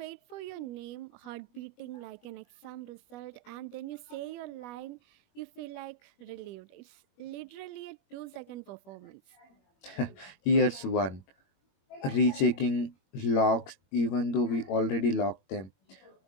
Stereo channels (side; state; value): right; late; 21 ms